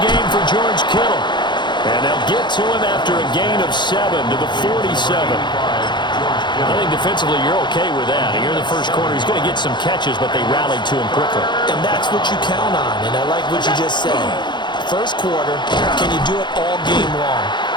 for George Kittle. And they'll get to him after a gain of 7 to the 47. I think defensively you're okay with that. Here in the first quarter, he's going to get some catches, but they rallied to him quickly. And that's what you count on, and I like what you just said. First quarter, can you do it all game long?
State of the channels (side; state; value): right; late; 0.22 ms